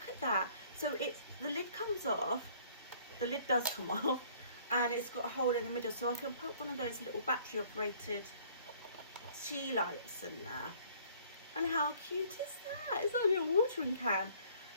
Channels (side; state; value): both; inverted; correlation -0.57